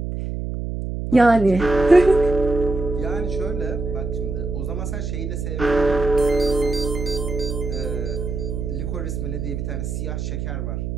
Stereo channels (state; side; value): noise; right; hum, 4 dB below the sound